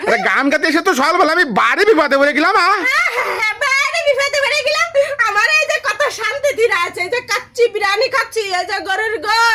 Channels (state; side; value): identical; both; correlation 1.00